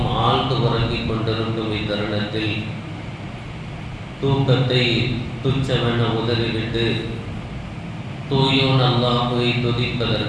ஆழ்ந்து உறங்கிக் கொண்டிருக்கும் இத்தருணத்தில் தூக்கத்தை துச்சமென உதறிவிட்டு தூயோன் அல்லாஹ்வை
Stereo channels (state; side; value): identical; both; correlation 1.00